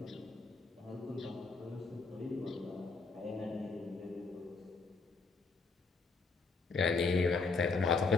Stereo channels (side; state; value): right; quieter; 4.3 dB